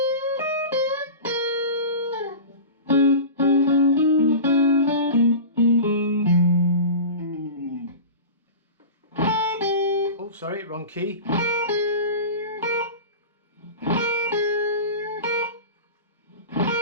Oh, sorry, wrong key.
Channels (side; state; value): both; inverted; correlation -0.31